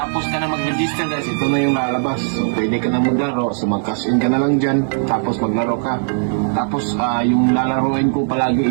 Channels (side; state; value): left; silent; digital silence